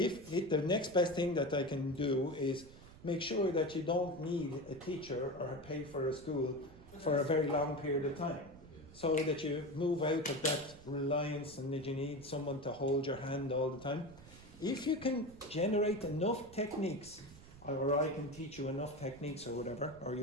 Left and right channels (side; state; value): right; noise; rumble, 20 dB below the sound